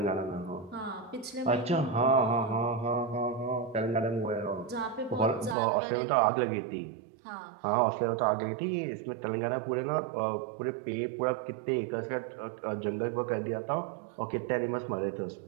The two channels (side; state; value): left; drops out; at 5.6 s